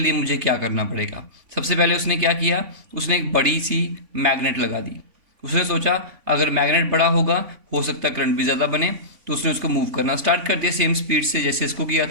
मुझे क्या करना पड़ेगा। सबसे पहले उसने क्या किया, उसने एक बड़ी सी मैग्नेट लगा दी। उसने सोचा अगर मैग्नेट बड़ा होगा हो सकता है करंट भी ज़्यादा बने, तो उसने उसको मूव करना स्टार्ट कर दिया सेम स्पीड से जैसे इसको किया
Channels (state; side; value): late; left; 3.5 ms